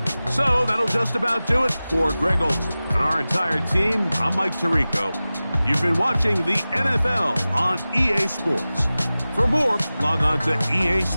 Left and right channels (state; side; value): inverted; both; correlation -0.97